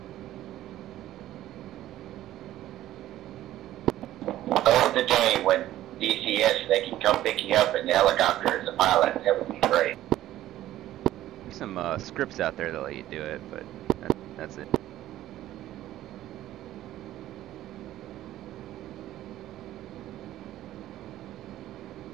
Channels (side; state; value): left; quieter; 13.9 dB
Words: Oh, the day when DCS, they can come pick you up in the helicopter as a pilot. That would be great. There's some scripts out there that let you do it, but that's it.